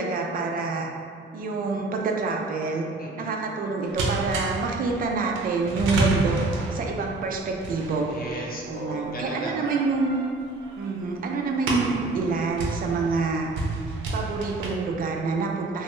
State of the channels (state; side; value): quieter; left; 3.2 dB